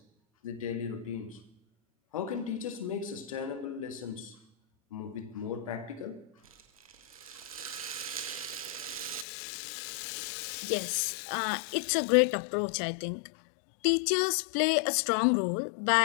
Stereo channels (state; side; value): drops out; right; at 9.2 s